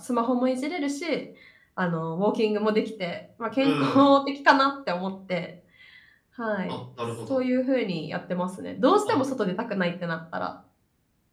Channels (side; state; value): both; identical; correlation 1.00